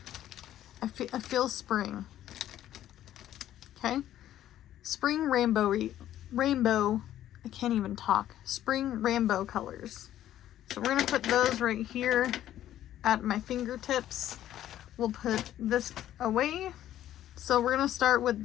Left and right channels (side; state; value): right; quieter; 12.3 dB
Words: I feel spring. Okay, spring rainbow, I can't even talk. Spring rainbow colors. So we're gonna put those right here at my fingertips. We'll put this away. So we're gonna start with